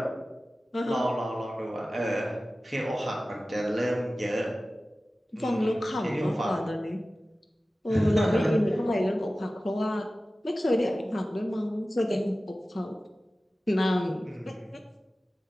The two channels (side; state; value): both; normal; correlation 0.96